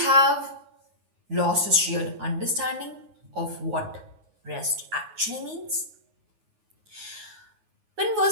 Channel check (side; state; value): left; late; 9.5 ms